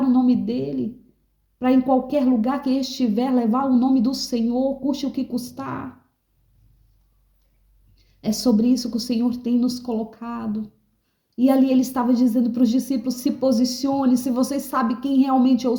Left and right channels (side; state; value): both; identical; correlation 1.00